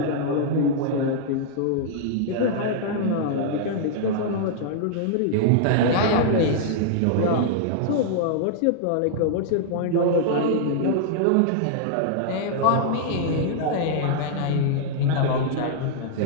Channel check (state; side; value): different; both; correlation -0.01